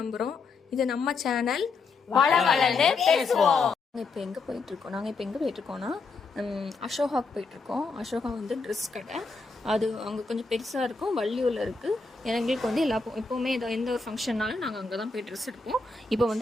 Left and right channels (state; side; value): quieter; right; 4.2 dB